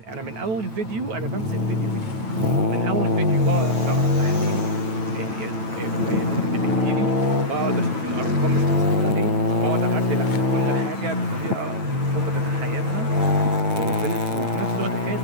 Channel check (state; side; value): late; left; 9.1 ms